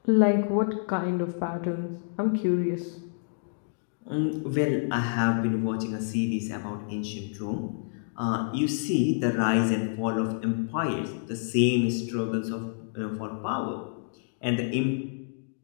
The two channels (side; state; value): right; silent; digital silence